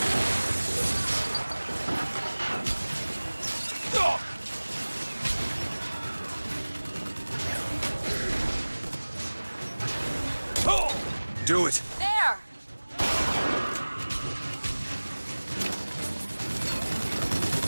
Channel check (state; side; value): inverted; both; correlation -1.00